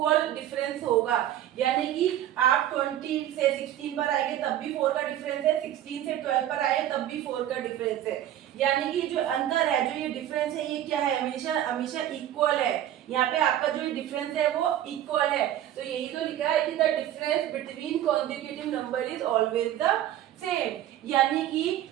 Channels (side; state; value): left; quieter; 12.1 dB